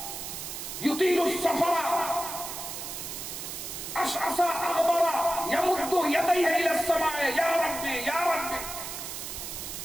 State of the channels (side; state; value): right; noise; hiss, 7 dB below the sound